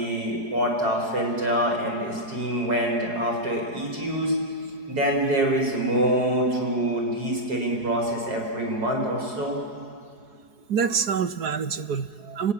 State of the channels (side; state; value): left; late; 4.8 ms